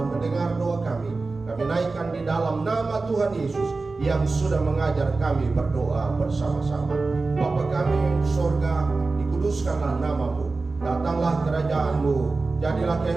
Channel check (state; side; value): quieter; left; 3.7 dB